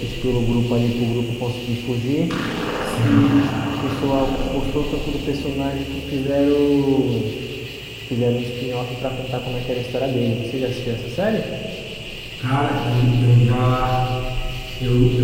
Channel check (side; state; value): both; identical; correlation 1.00